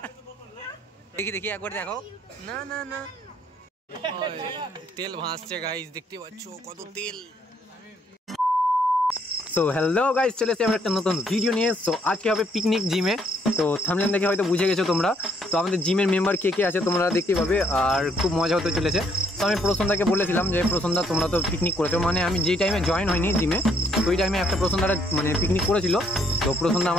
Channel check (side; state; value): both; normal; correlation 0.69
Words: দেখি দেখি একবার দেখো। না না না, তেল ভাসছে গাইস, দেখতে পাচ্ছ কত তেল। সো হ্যালো গাইস, চলে এসেছি আমরা একটা নতুন ভিডিও নিয়ে। সো আজকে হবে পিকনিক জিমে। তো থাম্বনেল দেখে হয়তো বুঝে গেছো তোমরা। তো আমাদের জিমের মেম্বার কে কে আছে তোমরা দেখতে পাবে, আর খুব মজা হতে চলেছে। তো আমি প্রসন্দাকে বলেছিলাম যে প্রসন্দা তোমরা তো পিকনিক করেছো, মানে আমি যেই টাইমে জয়েন হয়নি জিমে ওই টাইমে একটা প্রসন্দারা মানে পিকনিক করেছিল। তো প্রসন্দা